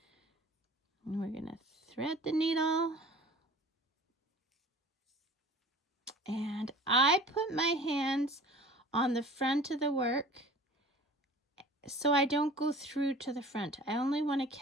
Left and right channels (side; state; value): both; normal; correlation 0.43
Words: And we're going to thread the needle. And I put my hands on the front of the work so I don't go through to the front. I only want to